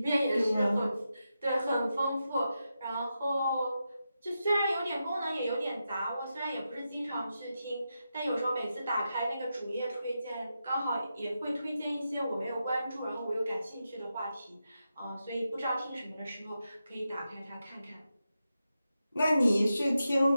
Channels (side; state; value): both; inverted; correlation -0.88